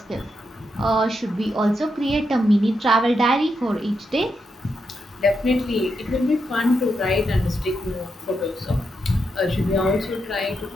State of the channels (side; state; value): both; normal; correlation 0.83